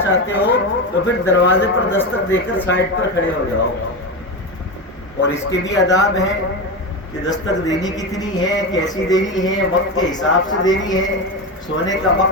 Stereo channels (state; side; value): normal; both; correlation 0.18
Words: چاہتے ہو تو پھر دروازے پر دستک دے کر سائڈ پر کھڑے ہو جاؤ۔ اور اس کے بھی آداب ہیں کہ دستک دینی کتنی ہے، کیسی دینی ہے، وقت کے حساب سے دینی ہے۔ سونے کا